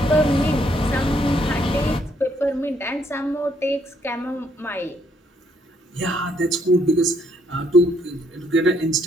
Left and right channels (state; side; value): normal; both; correlation 0.70